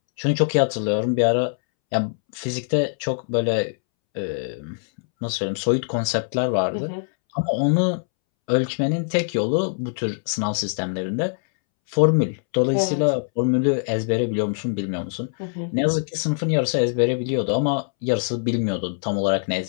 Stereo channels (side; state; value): right; silent; 63 dB below the other